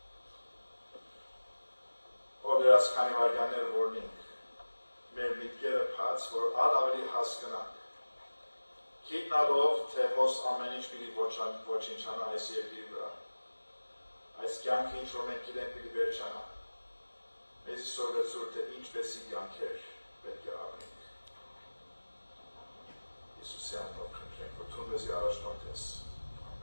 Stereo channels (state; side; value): inverted; both; correlation -1.00